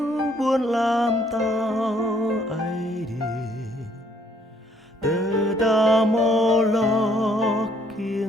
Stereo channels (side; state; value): both; normal; correlation 0.65